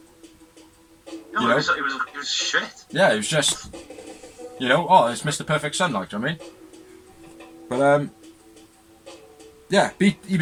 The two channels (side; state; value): both; identical; correlation 1.00